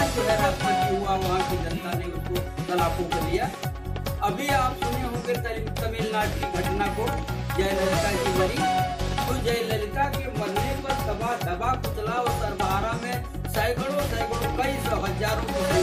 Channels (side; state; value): both; identical; correlation 1.00